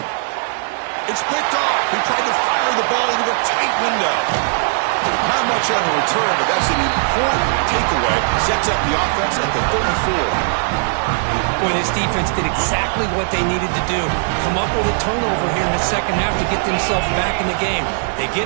It's picked off. He tried to fire the ball into a tight window. Not much on the return, but that's an important takeaway. Sets up the offense at the 34. Boy, this defense did exactly what they needed to do. Come up with a turnover here in the second half to get themselves back in the game. They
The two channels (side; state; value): left; silent; digital silence